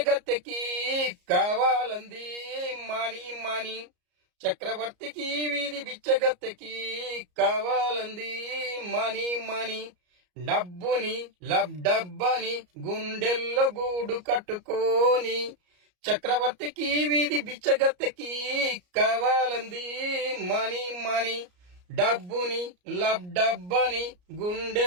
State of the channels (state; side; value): late; left; 34 ms